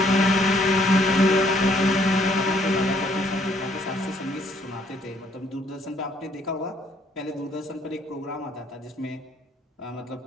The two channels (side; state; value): both; normal; correlation 0.65